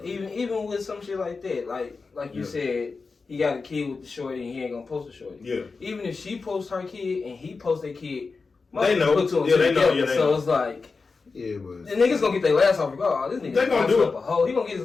even with some shit like that, like you said, he got a kid with the shorty and he ain't gonna post the shorty. Yeah. Even if she posts her kid and he posts their kid, they know. Put two and Yeah, two they know. together. Yeah, they so know. it's like, Yeah, but the niggas gonna get their last off regardless. This nigga They gonna do it. up a hoe. He gonna get his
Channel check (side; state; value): right; quieter; 4.4 dB